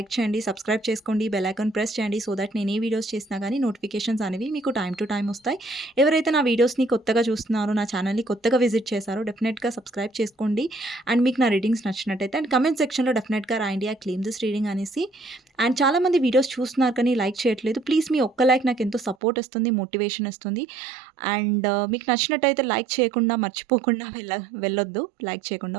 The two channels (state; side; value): drops out; left; at 19.2 s